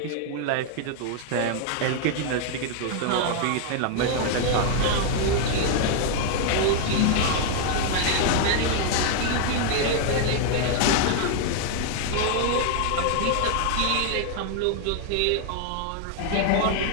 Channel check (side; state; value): both; different; correlation 0.00